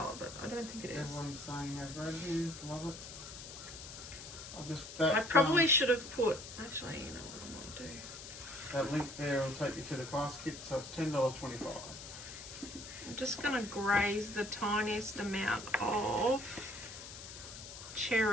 but I don't think it is. Everyone's saying they've read these, love it. I'll just I probably should have put. Actually, you know what I might do. that link there will take you to the class kit, so it's $10.25. I'm just going to graze the tiniest amount of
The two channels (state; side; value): noise; left; hiss, 12 dB below the sound